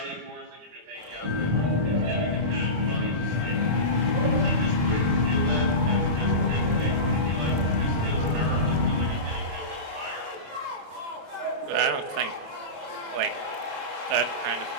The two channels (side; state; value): left; late; 27 ms